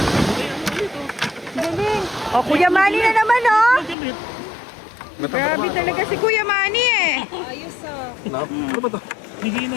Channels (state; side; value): drops out; right; at 4.0 s